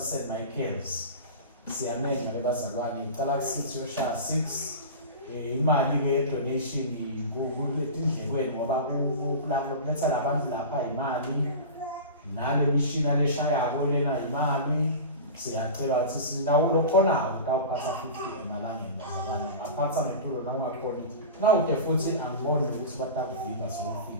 Michael's siyamenya ke bazalwane icala kusithi yoshaya 6 imali ke donation kuletindlekweni ngoba kuletha labantu lapha imali nale mishina leshayako lena imali. Siyacela ukuthi sinawo lokhonayo utawuphatha 50 emalangeni bazalwane aphatha ngentulo nawungakhona nawuke futhi angiboni ukuthi batakuviva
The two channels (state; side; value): inverted; both; correlation -0.30